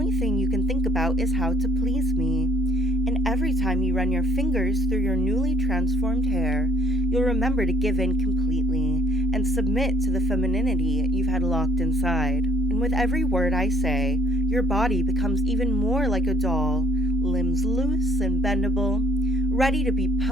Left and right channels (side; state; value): both; normal; correlation 0.63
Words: thing you can think about is how to please me. And every time you run your fingers through your newly transformed hair, you'll remember to give in completely and submit to the femininity you've had locked inside. And with every word I say, your body becomes even more like a doll, limbs loose and bendable, ready to be